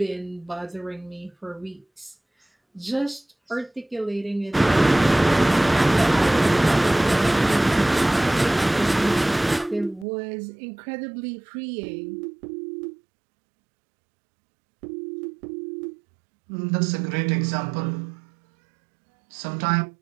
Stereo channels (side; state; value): left; drops out; at 10.1 s